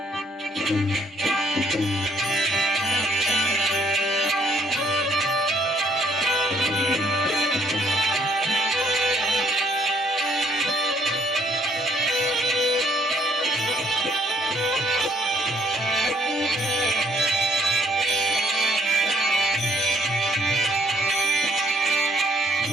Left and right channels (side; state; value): both; normal; correlation 0.67